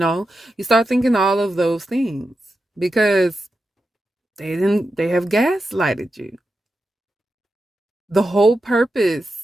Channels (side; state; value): both; normal; correlation 0.89